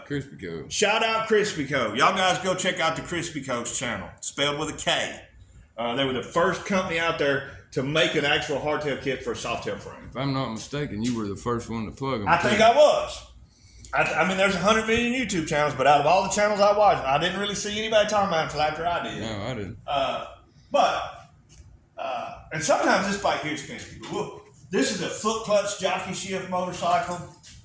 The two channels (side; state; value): both; identical; correlation 1.00